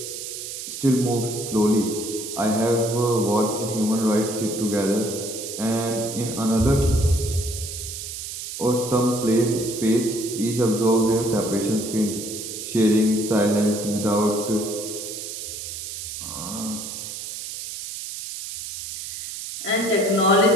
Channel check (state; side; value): noise; right; hiss, 8 dB below the sound